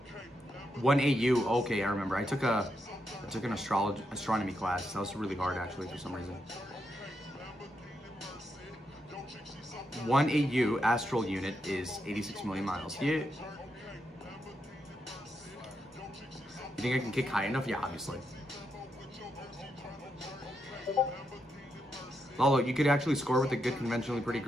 1 AU. Okay, I remember. I took an astronomy class. That was really hard actually for some reason. 1 AU astral unit is 86 million miles. Yeah. You think I can kick high enough? Yeah, obviously. Lalo, you could actually score with a good conventionally pretty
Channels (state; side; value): normal; both; correlation 0.82